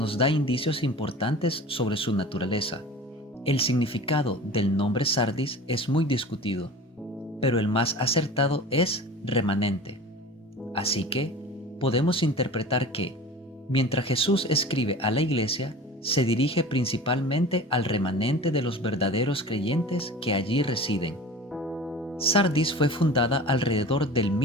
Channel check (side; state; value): both; normal; correlation 0.37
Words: da indicios importantes sobre su naturaleza. El significado del nombre Sardis es muy discutido, pero el más acertado es remanente. Así que podemos interpretar que, mientras Jesús escribe a la iglesia, se dirige principalmente al remanente de los verdaderos creyentes que allí residen. Sardis fue fundada alrededor del